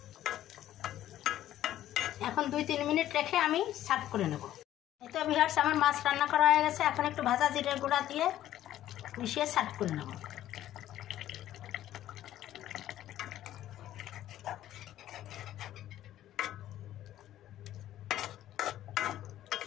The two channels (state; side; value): quieter; right; 12.8 dB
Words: এখন 2-3 মিনিট রেখে আমি সার্ভ করে নেব। এই তো ভিউয়ার্স, আমার মাছ রান্না করা হয়ে গেছে। এখন একটু ভাজা জিরের গুঁড়া দিয়ে মিশিয়ে সার্ভ করে নেব।